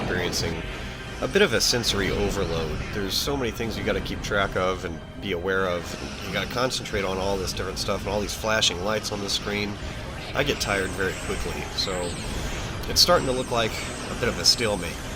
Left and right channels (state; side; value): identical; both; correlation 1.00